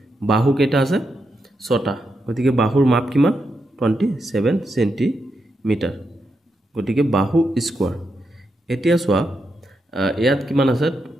বাহু কেটা আছে 6টা। গতিকে বাহুৰ মাপ কিমান 27 সেন্টিমিটাৰ। গতিকে বাহু স্কয়াৰ। এতিয়া চোৱা ইয়াত কিমান আছে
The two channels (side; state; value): both; normal; correlation 0.84